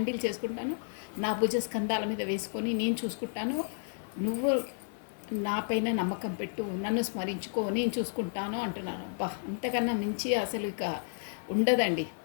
చేసుకుంటాను. నా భుజ స్కంధాల మీద వేసుకొని నేను చూసుకుంటాను. నువ్వు నాపైన నమ్మకం పెట్టు, నన్ను స్మరించుకో, నేను చూసుకుంటాను అంటున్నాను. బా, అంతకన్నా మించి అసలు ఇక ఉండదండి.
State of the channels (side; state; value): right; silent; 57 dB below the other